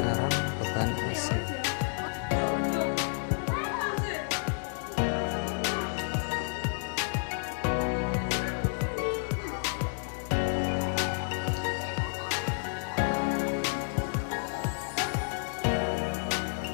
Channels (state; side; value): silent; right; digital silence